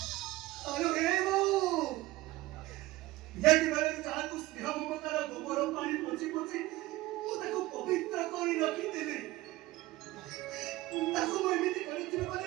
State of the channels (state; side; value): quieter; left; 18.0 dB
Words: ଆଲୋ ହେ ବୋଉ ଯେତେବେଳେ ଯାହାକୁ ସ୍ନେହ ମମତାର ଗୋବର ପାଣି ପୋଛି ପୋଛି ମୁଁ ତାକୁ ପବିତ୍ର କରି ରଖିଥିଲି ତାକୁ ମୁଁ ଏମିତି କରିଥିଲି